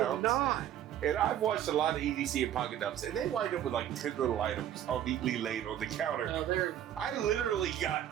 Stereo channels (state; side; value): quieter; left; 11.0 dB